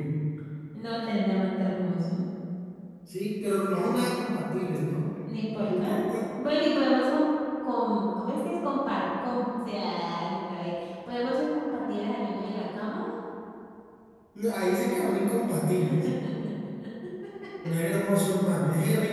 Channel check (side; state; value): both; identical; correlation 1.00